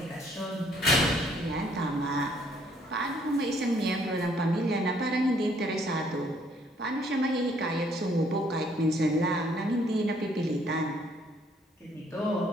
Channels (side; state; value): both; normal; correlation 0.65